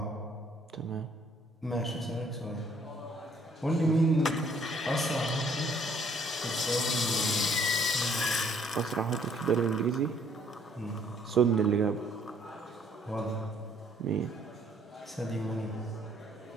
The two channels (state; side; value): normal; both; correlation 0.63